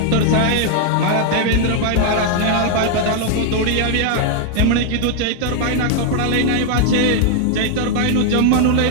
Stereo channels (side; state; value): both; different; correlation 0.00